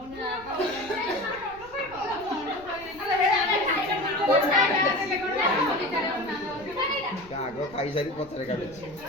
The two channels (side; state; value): left; noise; rumble, 23 dB below the sound